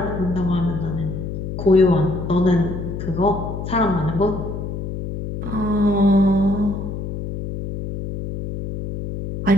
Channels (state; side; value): noise; left; hum, 6 dB below the sound